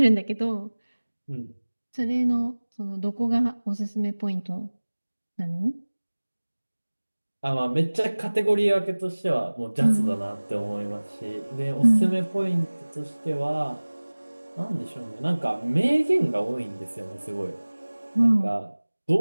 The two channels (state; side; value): inverted; both; correlation -1.00